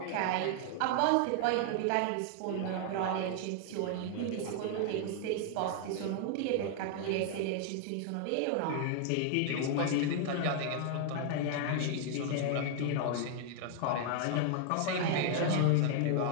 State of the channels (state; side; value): different; both; correlation 0.00